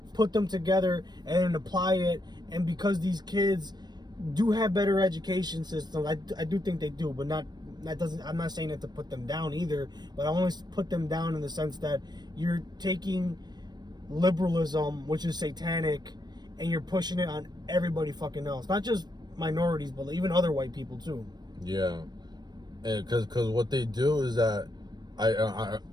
put them together and then apply it. And because these kids do have better education systems, I do think they do, but not that doesn't. I'm not saying that to put them down either, but I only put them down in the sense that you're taking liberalism, which is satanic, and you're pushing it on everybody fucking else, not just minorities, but even other white people too. Yeah, and because what they do is that I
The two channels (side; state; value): left; late; 0.20 ms